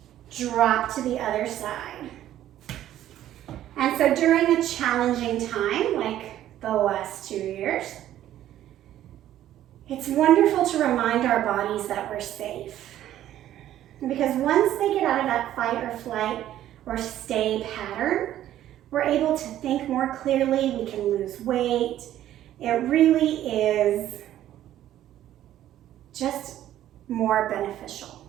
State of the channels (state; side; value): quieter; left; 12.4 dB